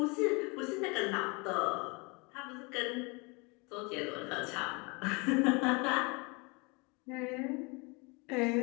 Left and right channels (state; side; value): quieter; right; 29.5 dB